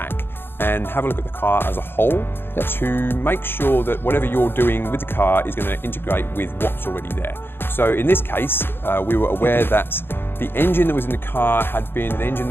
and have a look at the car as a whole to make sure that whatever you're doing with the car is going to integrate with what's already there. So in this case, we were aware that the engine that was in the car had been an engine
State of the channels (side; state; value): right; late; 0.10 ms